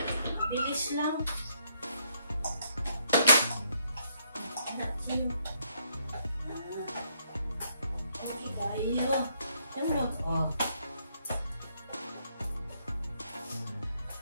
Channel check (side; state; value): both; inverted; correlation -0.73